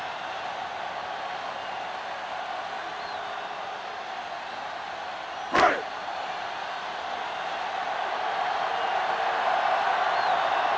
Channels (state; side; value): identical; both; correlation 1.00